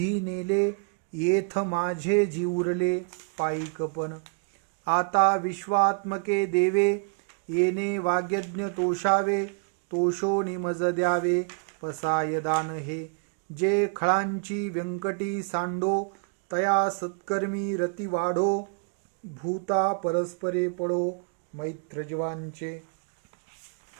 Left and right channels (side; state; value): left; quieter; 38.4 dB